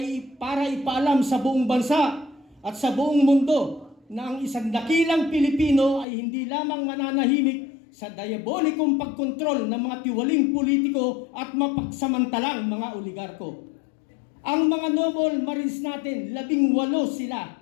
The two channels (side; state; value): right; drops out; at 6.1 s